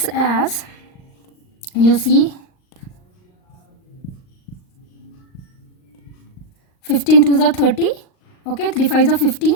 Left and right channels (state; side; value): late; right; 39 ms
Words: as, you see, 15 2s are 30, okay, 3 5s are 15,